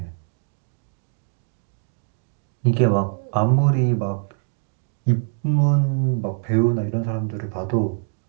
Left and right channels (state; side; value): silent; left; digital silence